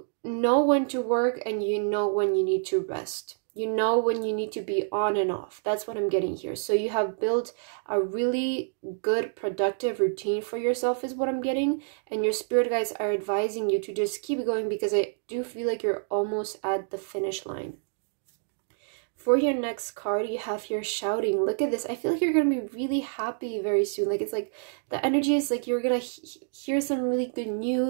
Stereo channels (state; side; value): silent; left; digital silence